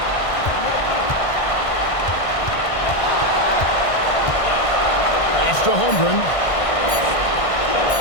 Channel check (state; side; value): late; right; 1.5 ms